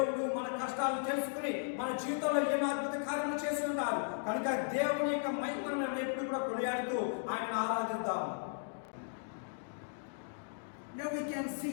మన కష్టాలు తెలుసుకుని మన జీవితంలో ఎన్నో అద్భుత కార్యాలు చేసి ఉన్నారు. కనుక దేవుని యొక్క మహిమను మనం ఎప్పుడు కూడా కొనియాడుతూ ఆయన ఆరాధిద్దాం. Now we can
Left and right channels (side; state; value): right; silent; digital silence